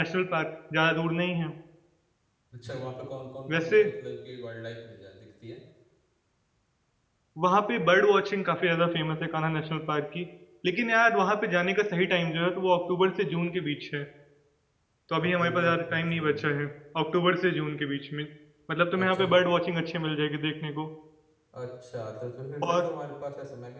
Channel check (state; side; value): identical; both; correlation 1.00